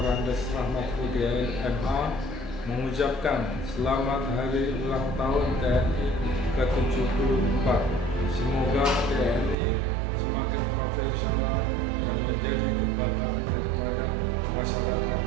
Rahmat Udiain MA mengucapkan selamat hari ulang tahun TNI ke-74. Semoga TNI semakin profesional dan menjadi kebanggaan daripada masyarakat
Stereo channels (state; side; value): drops out; left; at 9.6 s